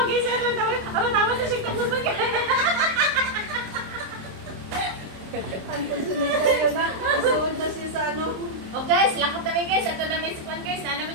sir, tama sa shake na puso ka. Ang sunod kayo na, suod na siya sa ano. Oh guys, lakot na guys. Ato na may sikwan guys. Na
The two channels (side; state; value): left; late; 26 ms